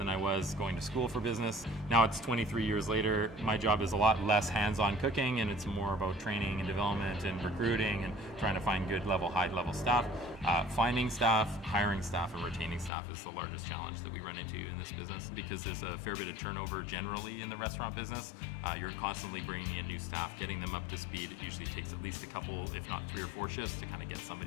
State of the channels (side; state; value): right; drops out; at 12.9 s